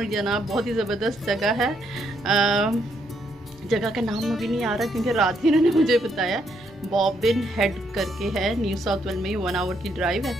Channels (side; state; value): both; normal; correlation 0.74